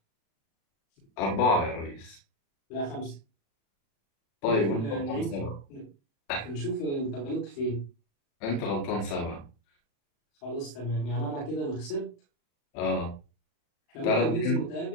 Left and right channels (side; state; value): right; late; 36 ms